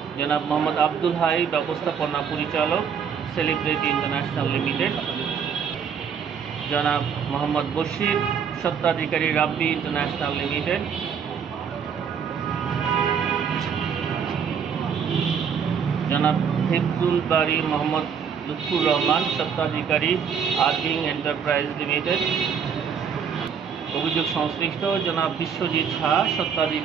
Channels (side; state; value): left; quieter; 7.1 dB